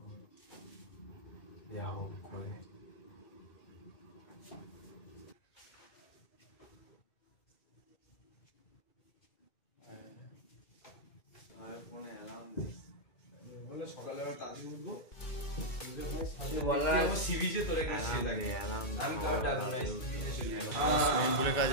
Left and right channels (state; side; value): late; right; 2.2 ms